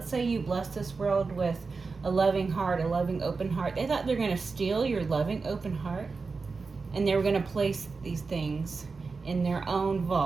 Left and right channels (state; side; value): quieter; left; 4.4 dB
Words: say you bless this world with a loving heart, a loving open heart. They thought they were going to steal your loving open heart, and they were going to place these things in their own